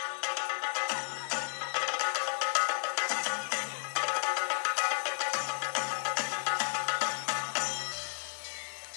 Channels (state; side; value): silent; right; digital silence